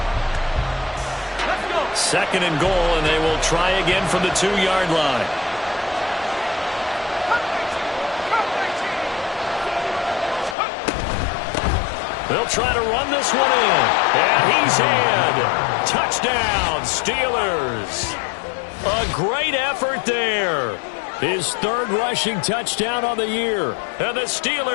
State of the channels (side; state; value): right; drops out; at 10.6 s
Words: Second and goal, and they will try again from the 2-yard line. They'll try to run this one in. And he's in. Touchdown, Steelers. A great effort there. His 3rd rushing touchdown on the year. And the